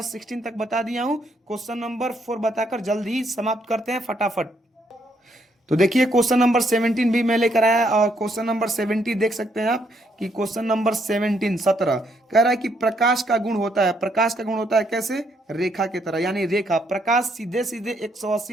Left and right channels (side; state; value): both; normal; correlation 0.73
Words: 16 तक बता दिया हूं, क्वेश्चन नंबर 4 बताकर जल्दी ही समाप्त करते हैं फटाफट। तो देखिए क्वेश्चन नंबर 17 भी मैं लेकर आया, और क्वेश्चन नंबर 17 देख सकते हैं आप कि क्वेश्चन नंबर 17 कह रहा है कि प्रकाश का गुण होता है। प्रकाश का गुण होता है कैसे? रेखा की तरह, यानी रेखा। प्रकाश सीधे सीधे